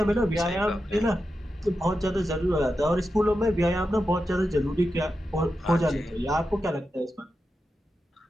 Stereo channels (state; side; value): normal; both; correlation 0.89